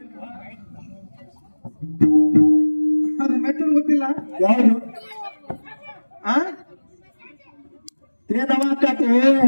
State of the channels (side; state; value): both; inverted; correlation -1.00